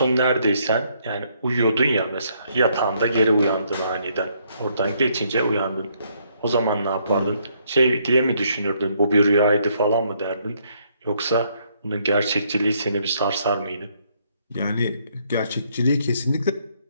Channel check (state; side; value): inverted; both; correlation -0.70